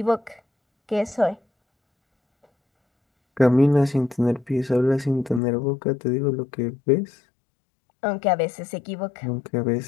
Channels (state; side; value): drops out; right; at 5.4 s